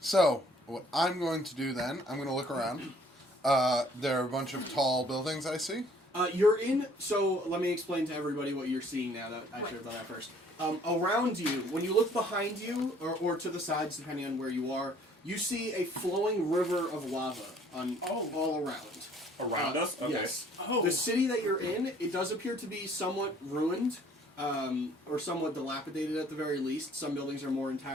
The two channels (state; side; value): normal; both; correlation 0.58